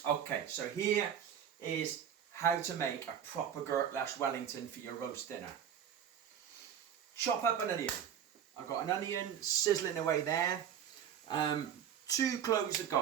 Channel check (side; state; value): left; quieter; 8.9 dB